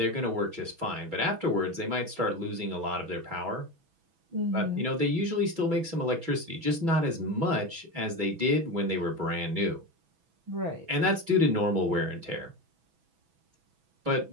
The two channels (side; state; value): left; late; 6.1 ms